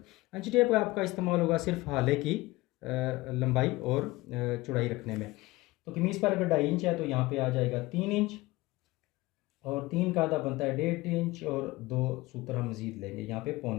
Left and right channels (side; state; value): right; quieter; 20.3 dB